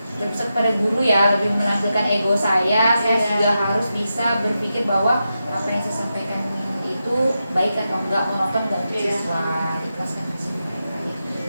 berpusat pada guru ya, lebih menampilkan ego saya juga harus bisa berpikir bahwa apa yang saya sampaikan itu baik atau enggak, menonton dan siswa ikhlaskan hasil mereka.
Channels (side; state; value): both; inverted; correlation -0.89